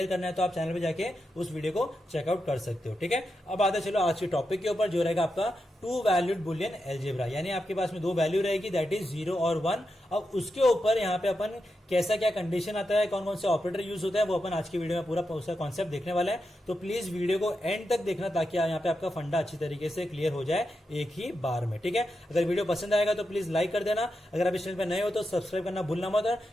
करना है, तो आप चैनल पे जाके उस वीडियो को चेकआउट कर सकते हो। ठीक है, अब आते चलो आज के टॉपिक के ऊपर, जो रहेगा आपका टू वैल्यूड बुलियन एल्जेब्रा। यानी आपके पास में दो वैल्यू रहेगी, दैट इज 0 और 1। अब उसके ऊपर यहाँ पे अपन कैसा क्या कंडीशन आता है, कौन कौन से ऑपरेटर यूज होता है, वो अपन आज की वीडियो में पूरा उसका कॉन्सेप्ट देखने वाला है। तो प्लीज वीडियो को एंड तक देखना, ताकि यहाँ पे आपका फंडा अच्छी तरीके से क्लियर हो जाए एक ही बार में। ठीक है, अगर वीडियो पसंद आएगा तो प्लीज लाइक कर देना। अगर आप इस चैनल पर नए हो तो सब्सक्राइब करना भूलना मत, और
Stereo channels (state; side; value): normal; both; correlation 0.87